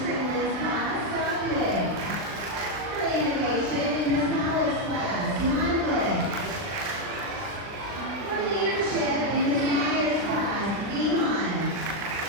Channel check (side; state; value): left; late; 39 ms